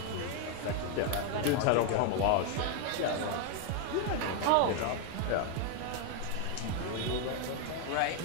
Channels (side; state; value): both; different; correlation 0.01